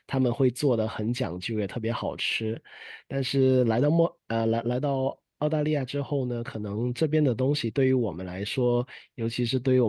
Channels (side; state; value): both; identical; correlation 1.00